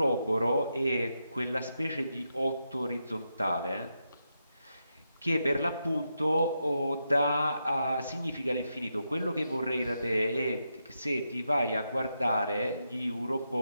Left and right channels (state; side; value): inverted; both; correlation -0.84